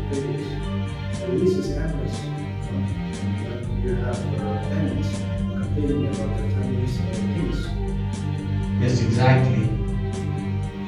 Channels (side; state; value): both; identical; correlation 1.00